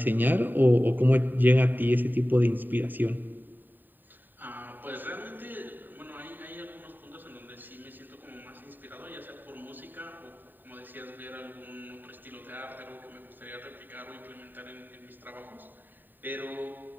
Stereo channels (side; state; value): left; late; 0.091 ms